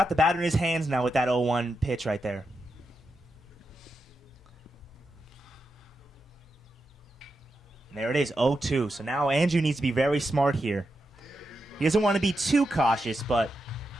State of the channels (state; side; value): normal; both; correlation 0.87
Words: the batter in his hands now with that 0-1 pitch right there. And there it is, 0-2. So now Andrew needs to be very smart here. He doesn't want to be too cautious, but